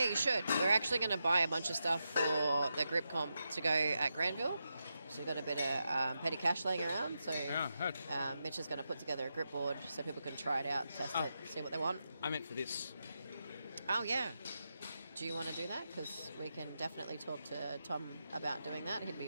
you should. We're actually going to buy a bunch of stuff for the grip comp to go at Granville. So we've got a bit of petty cash laying around. So Mitch is going to put together a grip board so people can try it out, test it, see what they want. I meant for this. Oh, yeah. Do you want to do that? Because we can definitely talk to Tom about doing that. He'd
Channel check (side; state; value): both; inverted; correlation -0.87